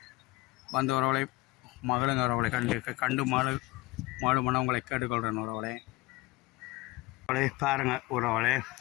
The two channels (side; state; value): right; quieter; 20.8 dB